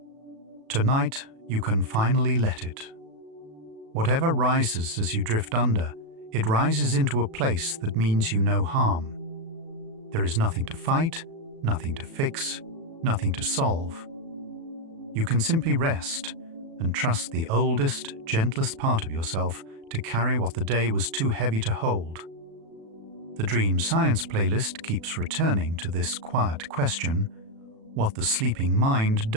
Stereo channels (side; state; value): left; late; 36 ms